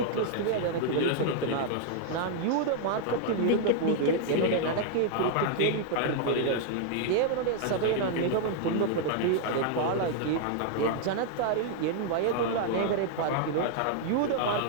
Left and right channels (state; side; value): different; both; correlation 0.00